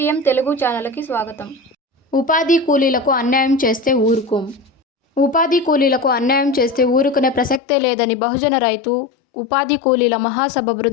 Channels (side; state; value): right; drops out; at 7.6 s